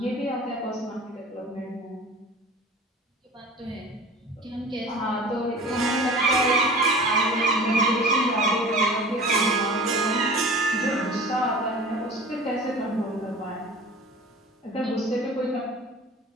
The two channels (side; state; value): both; normal; correlation 0.41